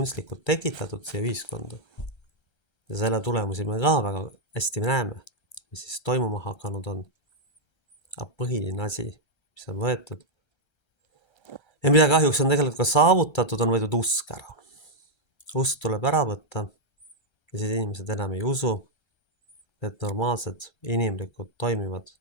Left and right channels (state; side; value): late; right; 1.3 ms